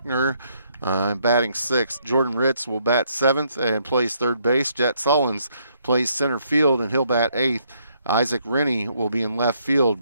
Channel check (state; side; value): inverted; both; correlation -0.71